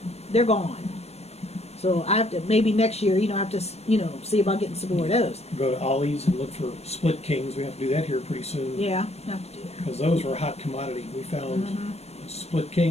They're gone. So I have to, maybe next year, you know, I have to, you know, see about getting some more of those. Go to Ollie's and look for split kings. We have to do that here pretty soon. Yeah, I have to do that. Because those were a hot commodity. We found split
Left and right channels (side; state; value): right; late; 0.31 ms